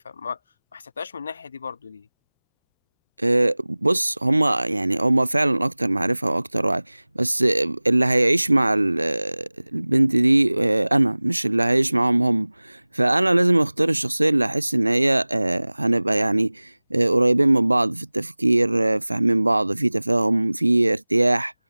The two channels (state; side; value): inverted; both; correlation -1.00